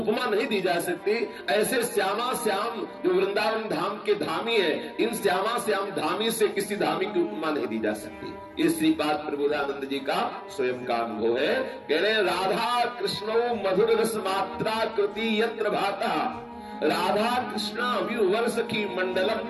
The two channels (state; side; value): identical; both; correlation 1.00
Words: नहीं दी जा सकती, ऐसे श्यामा श्याम जो वृंदावन धाम के धामी है, इन श्यामा श्याम धामी से किसी धामी की उपमा नहीं दी जा सकती। ये श्रीपाद प्रबोधानंद जी का स्वयं का अनुभव है। कह रहे राधा कृष्णो मधुर रस मात्रा कृति यत्र भाता, राधा कृष्ण विवर सखी